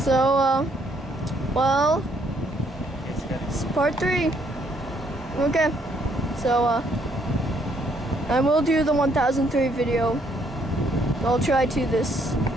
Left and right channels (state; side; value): normal; both; correlation 0.69